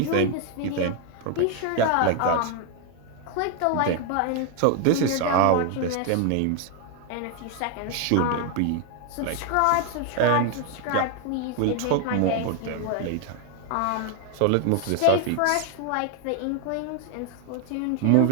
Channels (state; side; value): different; both; correlation 0.01